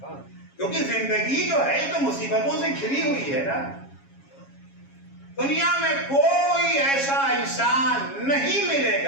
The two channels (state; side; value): late; right; 7.3 ms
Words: کیونکہ زندگی جو ہے تو مصیبتوں سے گھری ہوئی ہے نا، دنیا میں کوئی ایسا انسان نہیں ملے